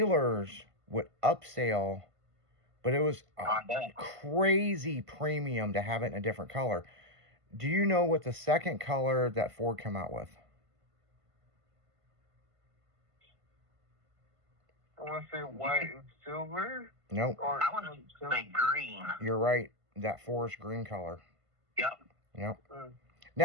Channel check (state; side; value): late; left; 1.5 ms